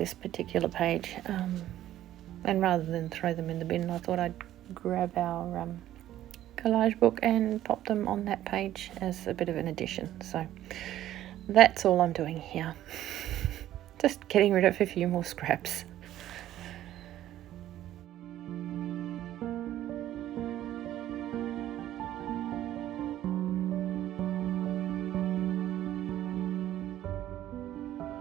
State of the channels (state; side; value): quieter; left; 13.0 dB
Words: particular page, and rather than throw them in the bin, I thought I'd grab our collage book and pop them on that page as a bit of an addition. So that's all I'm doing here. Just getting rid of a few more scraps.